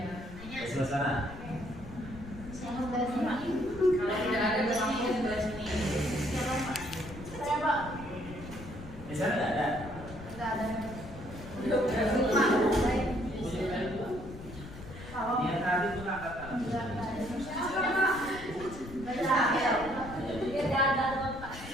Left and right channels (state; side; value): noise; left; rumble, 13 dB below the sound